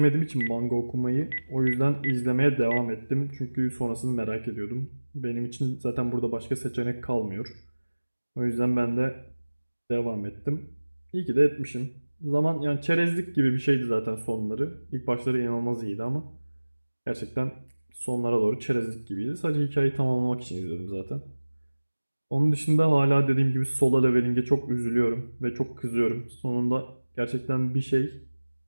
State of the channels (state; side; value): inverted; both; correlation -1.00